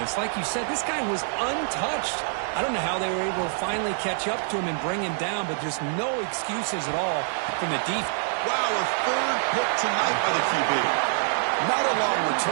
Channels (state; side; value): silent; left; digital silence